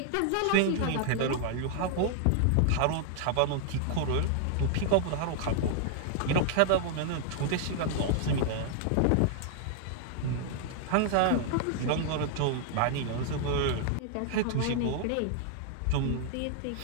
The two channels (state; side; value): different; both; correlation -0.01